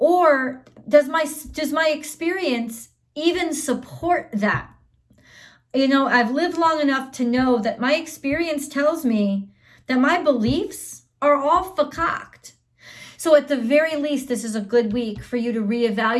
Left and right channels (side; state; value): both; identical; correlation 1.00